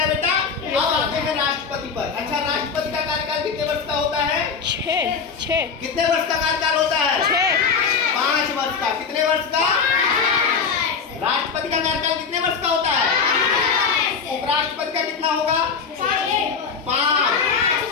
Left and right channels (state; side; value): quieter; right; 5.8 dB